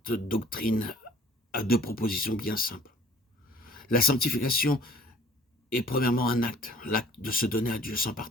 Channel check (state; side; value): normal; both; correlation 0.52